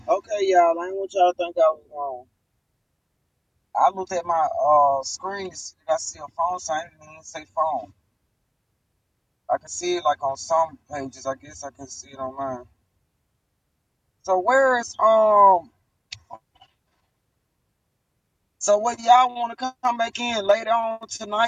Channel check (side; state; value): both; identical; correlation 1.00